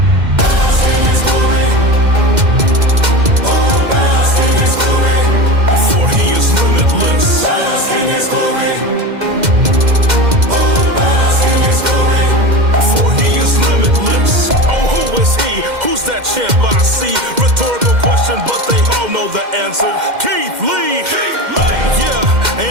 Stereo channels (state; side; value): late; left; 2.1 ms